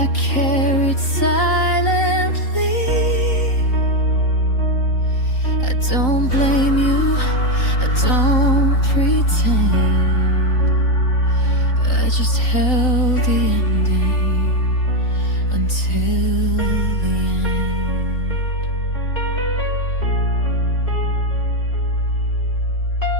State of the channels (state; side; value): late; right; 3.9 ms